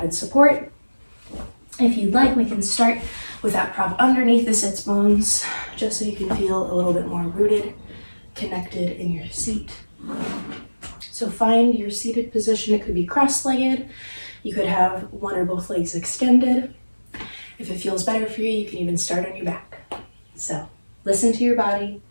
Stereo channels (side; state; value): both; inverted; correlation -1.00